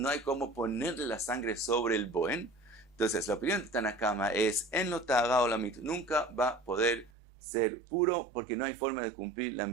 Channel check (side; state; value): left; drops out; at 7.1 s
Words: hay cómo ponerle la sangre sobre el boen. Entonces la opinión de Tanakama es en lo ta'ara o la mit, nunca va a poder ser puro porque no hay forma de cumplir la